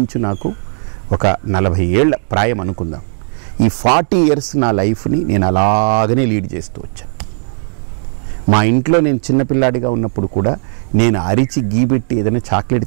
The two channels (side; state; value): left; silent; digital silence